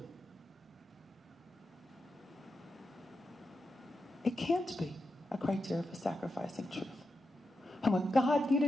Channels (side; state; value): both; normal; correlation 0.88